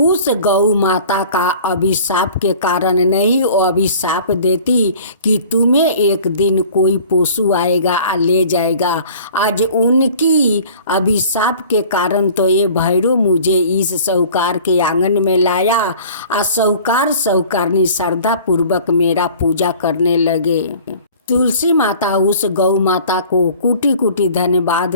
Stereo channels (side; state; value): both; inverted; correlation -0.47